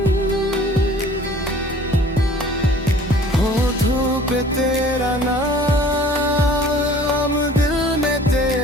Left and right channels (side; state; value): both; normal; correlation 0.50